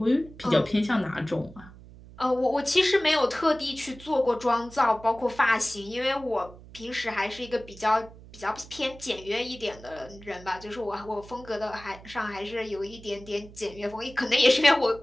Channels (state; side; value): noise; right; hum, 19 dB below the sound